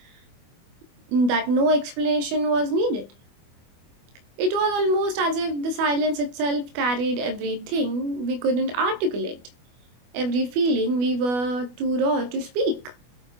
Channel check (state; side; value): late; left; 24 ms